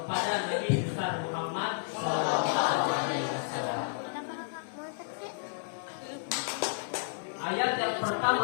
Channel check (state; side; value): silent; right; digital silence